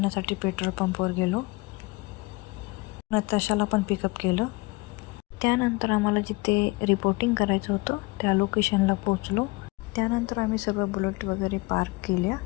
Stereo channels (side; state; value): right; quieter; 24.6 dB